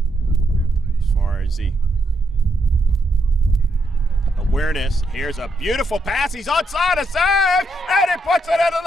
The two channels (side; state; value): both; normal; correlation 0.79